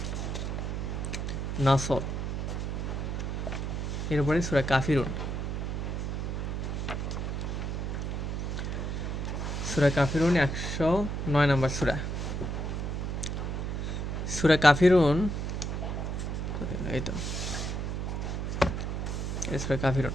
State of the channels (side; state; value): right; noise; hum, 2 dB below the sound